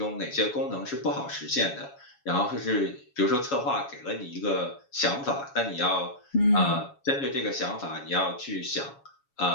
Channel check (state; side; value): late; right; 7.2 ms